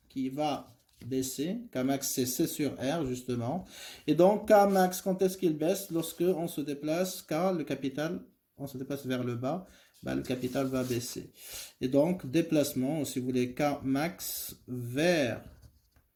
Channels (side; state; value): both; identical; correlation 1.00